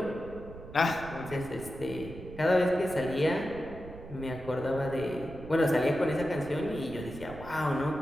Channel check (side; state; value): right; noise; rumble, 14 dB below the sound